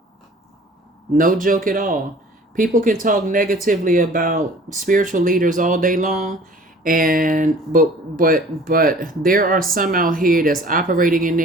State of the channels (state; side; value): normal; both; correlation 0.49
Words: No joke at all. People can talk negatively about spiritual leaders all day long, but there are some out here that's operating in